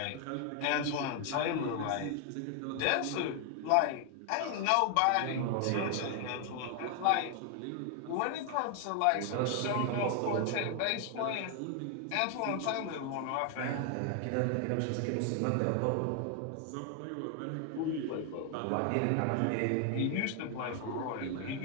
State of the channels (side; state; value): both; different; correlation 0.00